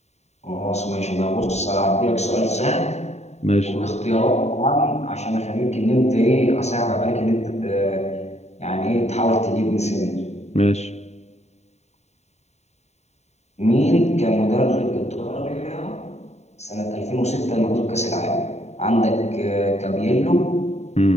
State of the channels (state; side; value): late; right; 0.32 ms